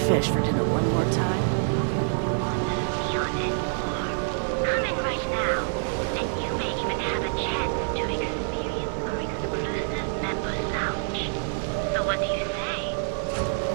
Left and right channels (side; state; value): left; silent; digital silence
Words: fish for dinner one more time.